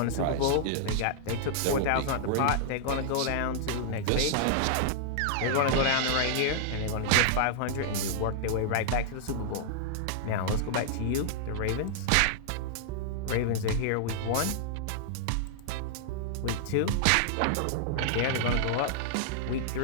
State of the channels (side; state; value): both; different; correlation -0.01